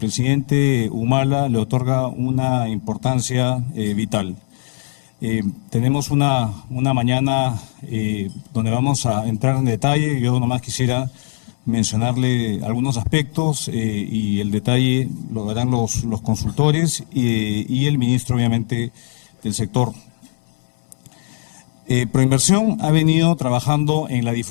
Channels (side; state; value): right; silent; digital silence